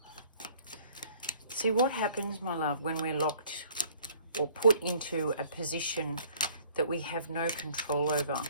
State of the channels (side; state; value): both; inverted; correlation -0.55